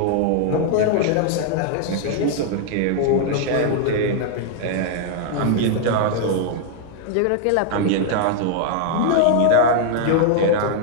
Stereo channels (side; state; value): both; different; correlation -0.01